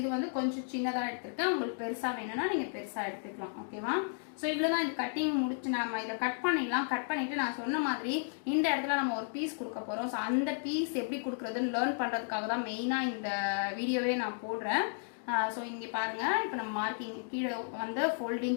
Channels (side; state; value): right; silent; digital silence